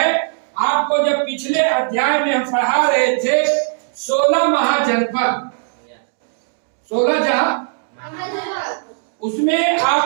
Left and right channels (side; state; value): left; silent; digital silence